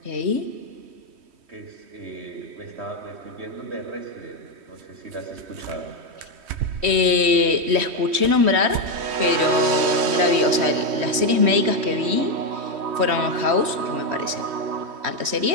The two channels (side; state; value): left; late; 3.1 ms